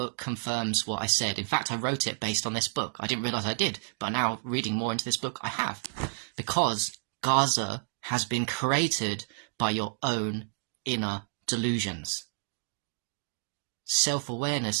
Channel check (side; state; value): left; silent; digital silence